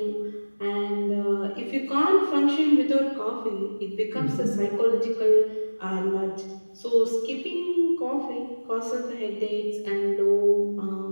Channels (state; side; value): inverted; both; correlation -1.00